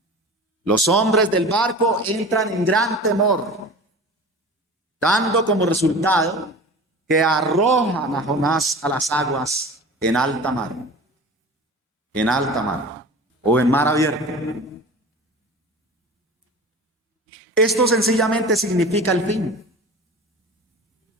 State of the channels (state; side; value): normal; both; correlation 0.37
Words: Los hombres del barco entran en gran temor, dando como resultado que arrojan a Jonás a las aguas en alta mar. En alta mar o en mar abierto. Esto sencillamente significa el fin.